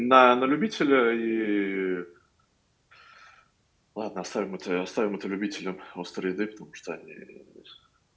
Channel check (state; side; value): identical; both; correlation 1.00